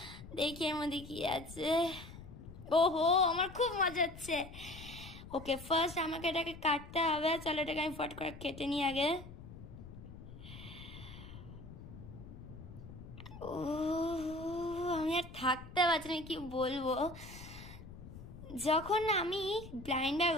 দেখি এর মধ্যে কি আছে। ওহো আমার খুব মজা হচ্ছে। ওকে ফার্স্ট আমাকে এটাকে কাটতে হবে। চলো এটাকে আমি ফট করে কেটে নিই আগে। ও আমি আর থাকতে পারছি না, কি বলবো। যখন আমি ব্লাইন্ড ব্যাগ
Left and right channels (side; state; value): left; noise; rumble, 14 dB below the sound